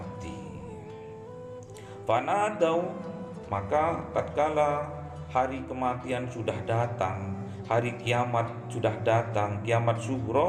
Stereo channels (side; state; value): both; identical; correlation 1.00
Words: Fanadau, maka tatkala hari kematian sudah datang, hari kiamat sudah datang, kiamat